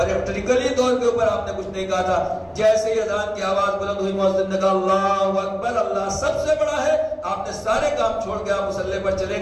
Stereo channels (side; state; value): both; identical; correlation 1.00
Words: طور کے اوپر آپ نے کچھ نہیں کہا تھا. جیسے ہی اذان کی آواز بلند ہوئی، مؤذن نے کہا اللہ اکبر، اللہ سب سے بڑا ہے. آپ نے سارے کام چھوڑ کے آپ مصلی پر چلے